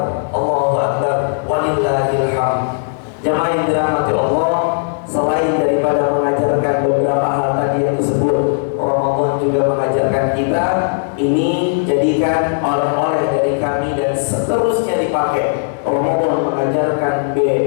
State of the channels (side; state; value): right; silent; digital silence